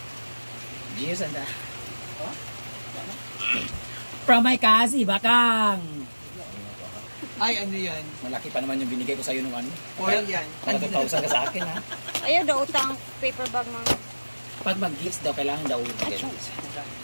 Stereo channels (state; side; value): inverted; both; correlation -1.00